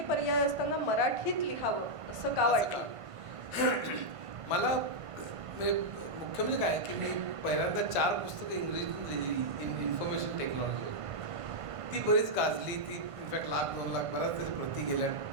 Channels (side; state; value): left; late; 1.5 ms